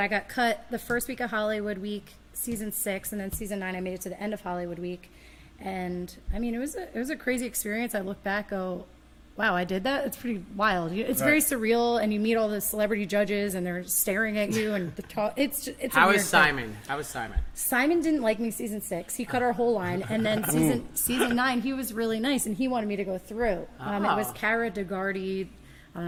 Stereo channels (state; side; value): identical; both; correlation 1.00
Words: got cut the first week of Hollywood week, season 6, and then season 9 I made it to the end of Hollywood week, and I mean it was a crazy experience. I look back, go, wow, I did that. It's pretty wild. It's very surreal, and you meet all the celebrity judges, and they're staring at you, and it's a How weird was thing. Simon? How was Simon? Simon didn't like me season 6. He cut our whole line, and then season 9, he was really nice, and he wanted me to go through. It was Oh. Cara DeGardi. I